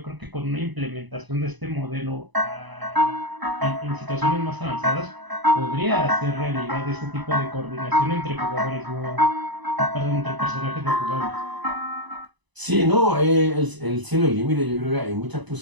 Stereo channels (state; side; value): late; left; 1.0 ms